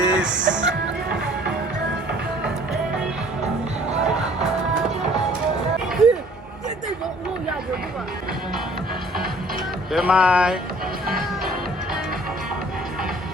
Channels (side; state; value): both; normal; correlation 0.54